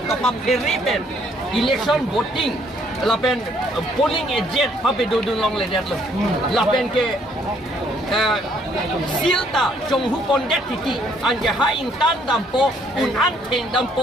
kapap periben election voting lapen polling agent pape dodun long le det lapen ke silta chonghu pondet tiki anja haing tan dampo un anteng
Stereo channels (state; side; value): normal; both; correlation 0.66